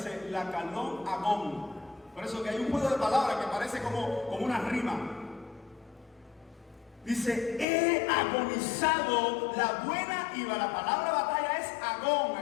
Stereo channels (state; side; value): drops out; right; at 7.7 s